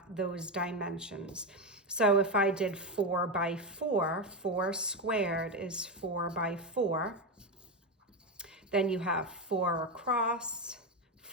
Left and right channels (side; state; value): both; normal; correlation 0.12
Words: those dimensions. So if I did 4 by 4, 4 squared is 4 by 4. Then you have 4 across,